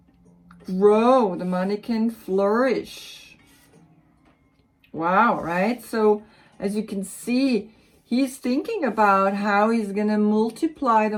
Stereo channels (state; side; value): identical; both; correlation 1.00